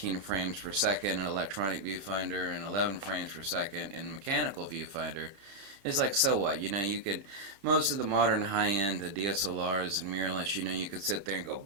frames per second in electronic viewfinder and 11 frames per second in mechanical viewfinder. It's like, so what? You could, most of the modern high-end DSLRs and mirrorless, you could sit there and go,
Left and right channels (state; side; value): late; left; 30 ms